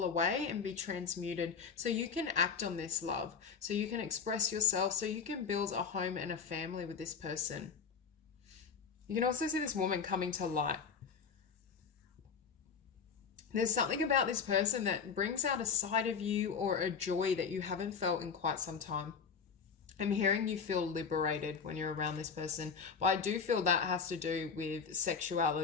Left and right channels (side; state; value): right; quieter; 6.0 dB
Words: away and be transmuted so you can act on this love, so you can express yourself, so you can build a home and a family with this person. You can also see this woman coming to light. There's something about this person that brings out a side of you or a joy that you haven't felt in quite some time. I'm hearing you feel liberated when you're around this person, but I do feel that has to do with